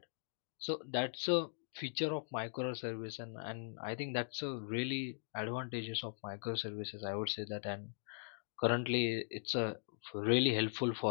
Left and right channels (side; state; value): right; silent; digital silence